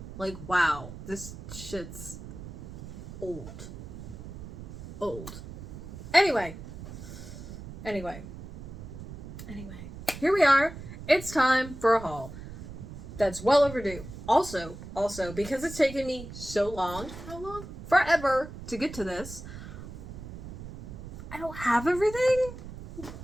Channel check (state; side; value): noise; right; rumble, 12 dB below the sound